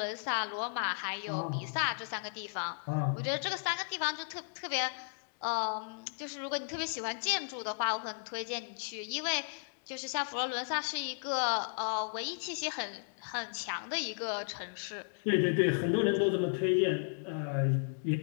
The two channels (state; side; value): silent; right; digital silence